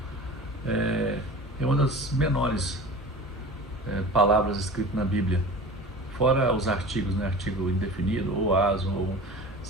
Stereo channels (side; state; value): both; normal; correlation 0.37